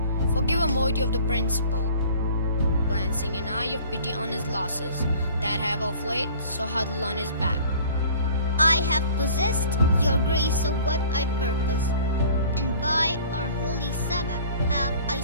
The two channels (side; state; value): both; inverted; correlation -0.48